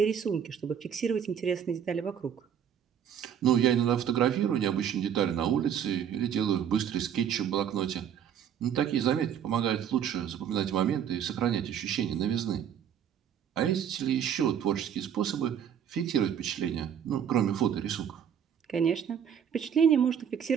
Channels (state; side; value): quieter; left; 8.7 dB